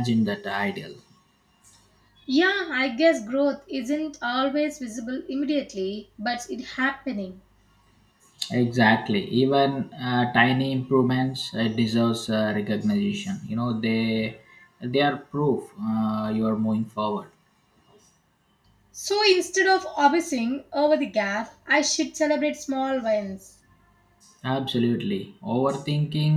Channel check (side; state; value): both; identical; correlation 1.00